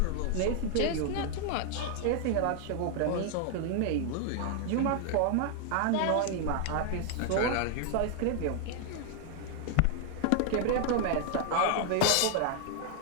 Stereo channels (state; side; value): different; both; correlation 0.00